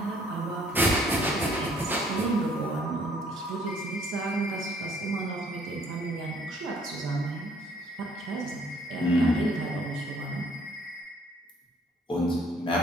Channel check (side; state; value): both; normal; correlation 0.62